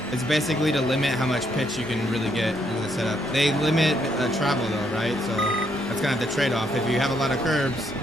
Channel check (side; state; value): both; normal; correlation 0.74